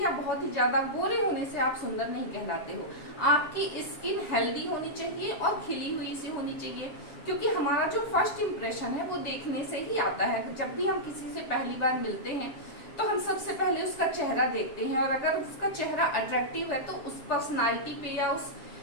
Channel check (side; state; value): right; late; 7.4 ms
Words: बहुत ही ज्यादा गोरे होने से आप सुंदर नहीं कहलाते हो। आपकी स्किन हेल्दी होनी चाहिए और खिली हुई सी होनी चाहिए, क्योंकि हमारा जो फर्स्ट इम्प्रेशन है वो देखने से ही आता है। जब भी हम किसी से पहली बार मिलते हैं तो हम सबसे पहले उसका चेहरा देखते हैं, और अगर उसका चेहरा अट्रैक्टिव है तो उस पर्सनालिटी पे या उस